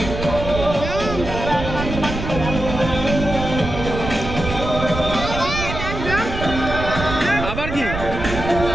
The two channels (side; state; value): right; noise; rumble, 6 dB below the sound